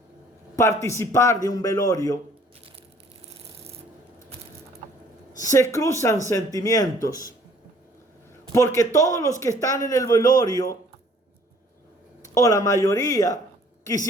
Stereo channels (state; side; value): normal; both; correlation 0.57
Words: participar de un velorio, se cruzan sentimientos, porque todos los que están en el velorio, o la mayoría,